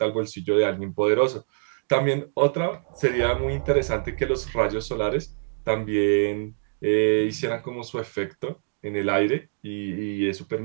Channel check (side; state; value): left; silent; digital silence